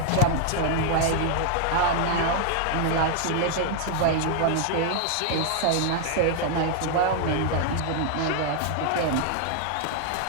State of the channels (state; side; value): different; both; correlation 0.00